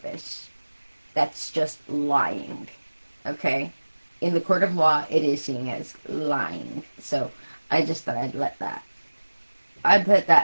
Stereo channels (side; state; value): both; inverted; correlation -1.00